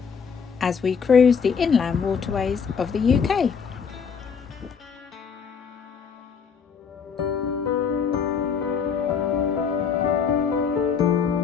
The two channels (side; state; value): right; quieter; 6.3 dB